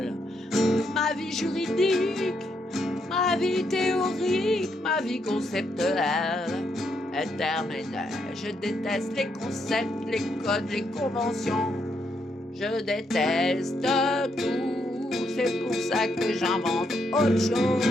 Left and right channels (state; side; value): normal; both; correlation 0.77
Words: ma vie juridique, ma vie théorique, ma vie conceptuelle est terminée. Je déteste les concepts, les codes, les conventions. Je déteste tout. C'est pour ça que j'invente autre chose